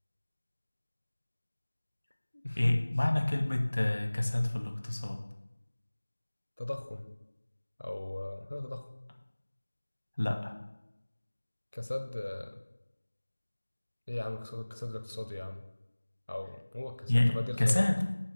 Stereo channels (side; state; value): both; inverted; correlation -1.00